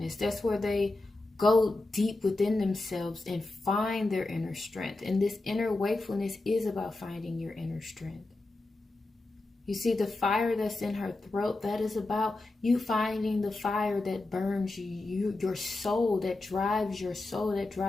That's where they go deep within themselves and find their inner strength. And this inner wakefulness is about finding your inner strength. You see, the fire that's in her throat, that is about you finding the fire that burns you, your soul, that drives your soul, that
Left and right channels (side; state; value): right; quieter; 3.0 dB